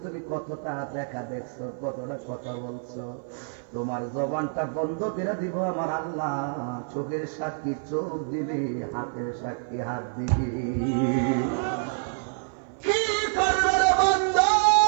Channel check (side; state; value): left; silent; 56 dB below the other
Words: তুমি কতটা দেখা দেখছো, কতটা কথা বলছো। তোমার জবানটা বন্ধ করে দিব আমার আল্লাহ, চোখের সাক্ষী চোখ দিবি, হাতের সাক্ষী হাত দিবি। কি করবে রে বন্ধু,